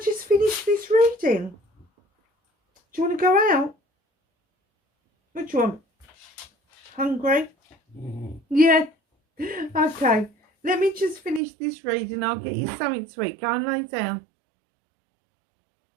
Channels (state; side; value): drops out; left; at 11.4 s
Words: just finish this reading? Do you want to go out? What do you want? Hungry? Yeah. Okay. Let me just finish this reading. I'll get you something to eat. Go and lay down.